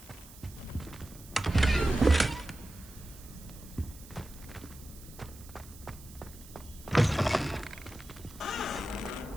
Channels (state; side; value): noise; right; hiss, 19 dB below the sound